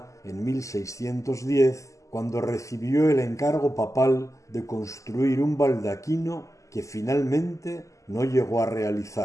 en 1610, cuando recibió el encargo papal de construir un baldaquino que finalmente no llegó a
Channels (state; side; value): late; right; 0.16 ms